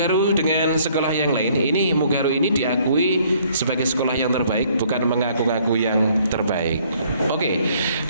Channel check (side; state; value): both; inverted; correlation -0.62